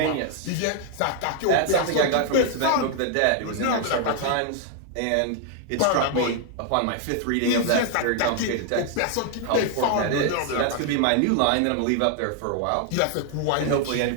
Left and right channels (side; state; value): both; different; correlation 0.00